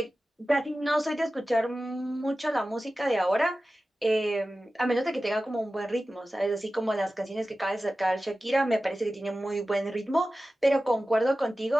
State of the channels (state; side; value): normal; both; correlation 0.95